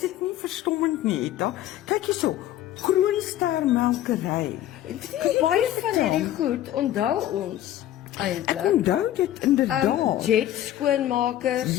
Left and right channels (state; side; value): quieter; right; 12.8 dB